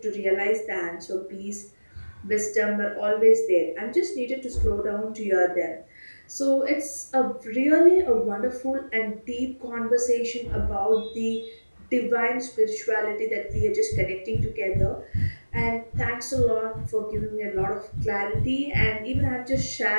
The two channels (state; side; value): inverted; both; correlation -1.00